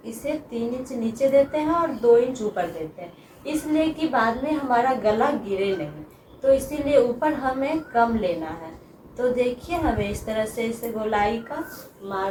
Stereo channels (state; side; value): identical; both; correlation 1.00